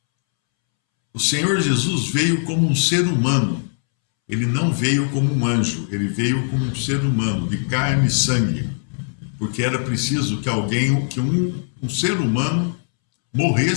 o Senhor Jesus veio como um ser humano. Ele não veio como um anjo, ele veio como um ser humano, de carne e sangue. Porque era preciso que um ser humano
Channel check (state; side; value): silent; right; 65 dB below the other